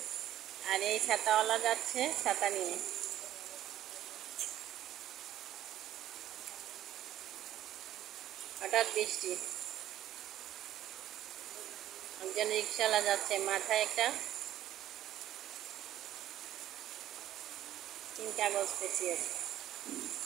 আর এই ছাতাওয়ালা যাচ্ছে ছাতা নিয়ে। হঠাৎ বৃষ্টি, একজন রিক্সাওয়ালা যাচ্ছে, মাথায় একটা তিন কাগজ পেঁচিয়েছে।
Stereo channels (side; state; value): left; quieter; 12.6 dB